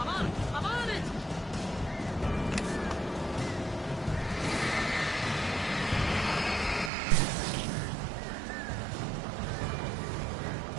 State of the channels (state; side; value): drops out; left; at 6.9 s